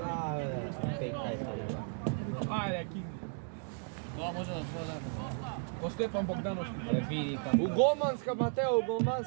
бе, текај сега. Ајде, Кинги. Тоа може да твоја запад. По Стефан Богдановски. Види таму. У голманска, Матео, у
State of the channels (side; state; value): left; silent; 55 dB below the other